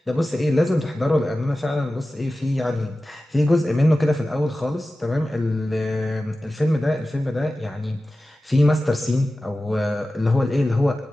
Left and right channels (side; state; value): both; normal; correlation 0.95